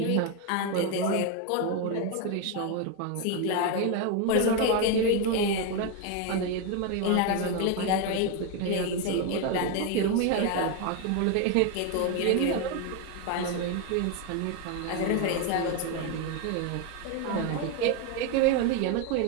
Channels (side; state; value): both; different; correlation 0.02